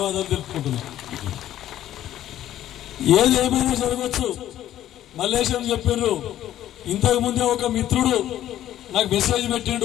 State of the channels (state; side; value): quieter; right; 12.4 dB